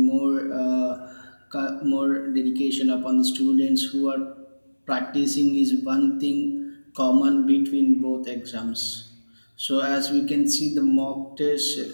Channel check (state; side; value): inverted; both; correlation -1.00